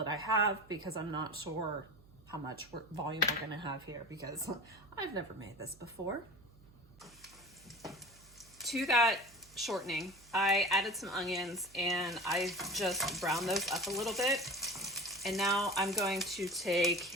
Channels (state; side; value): noise; right; hum, 25 dB below the sound